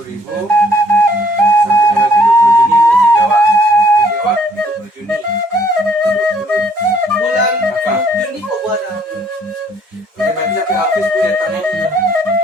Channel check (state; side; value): normal; both; correlation 0.62